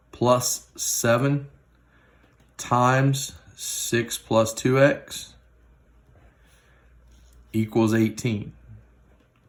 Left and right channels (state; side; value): identical; both; correlation 1.00